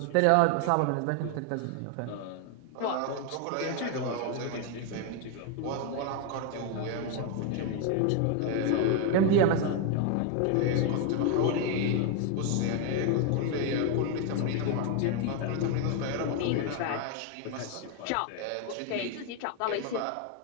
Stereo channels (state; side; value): different; both; correlation 0.01